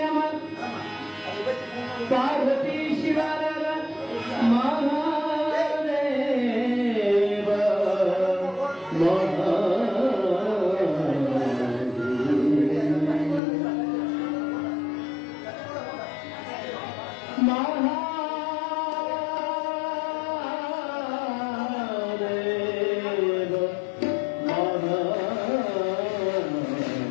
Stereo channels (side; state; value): right; drops out; at 13.4 s